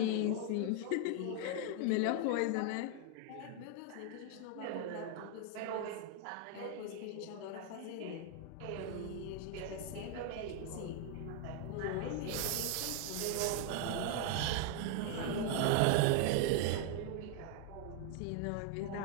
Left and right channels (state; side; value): different; both; correlation 0.00